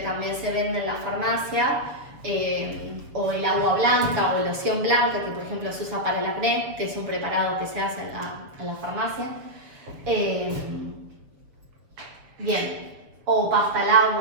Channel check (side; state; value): left; late; 7.2 ms